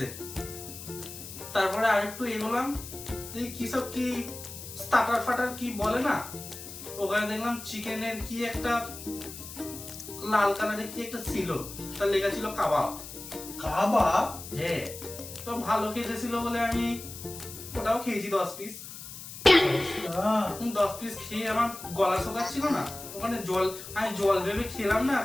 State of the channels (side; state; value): left; noise; hiss, 12 dB below the sound